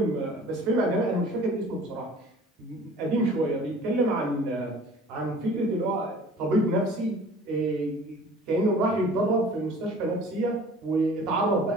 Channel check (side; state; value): both; normal; correlation 0.47